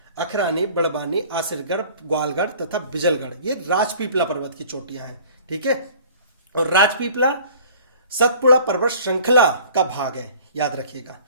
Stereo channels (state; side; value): inverted; both; correlation -0.48